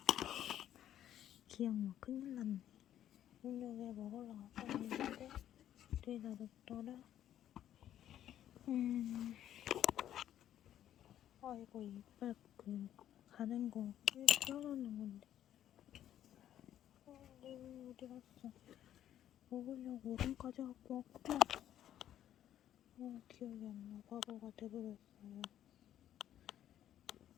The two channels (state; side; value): quieter; right; 11.3 dB